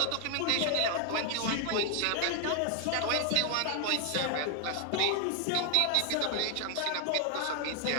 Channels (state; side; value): different; both; correlation 0.00